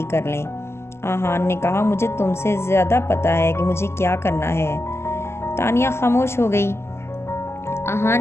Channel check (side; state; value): right; late; 0.12 ms